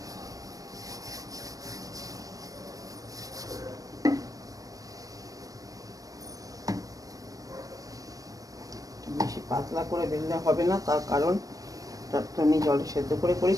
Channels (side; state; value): left; late; 0.17 ms